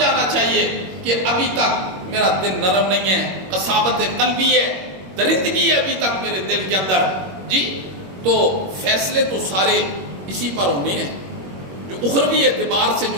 چاہیے کہ ابھی تک میرا دل نرم نہیں ہے, قساوت قلبی ہے, درندگی ہے ابھی تک میرے دل کے اندر. جی تو فیصلے تو سارے اسی پر ہونے ہیں, جو اخروی اعتبار سے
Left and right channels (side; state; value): left; late; 21 ms